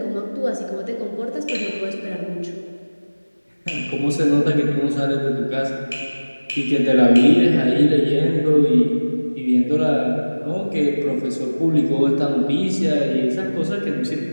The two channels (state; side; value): inverted; both; correlation -1.00